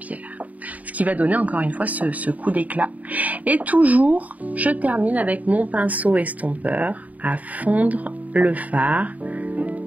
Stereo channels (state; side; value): late; left; 0.073 ms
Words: Ce qui va donner encore une fois ce coup d'éclat. Et toujours, je termine avec mon pinceau estompeur à fondre le fard